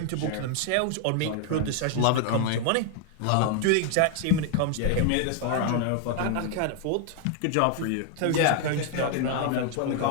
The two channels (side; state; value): both; different; correlation 0.00